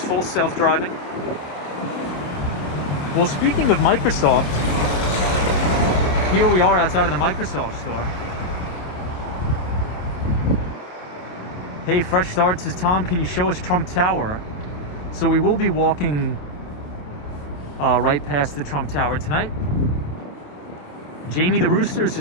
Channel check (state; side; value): late; right; 27 ms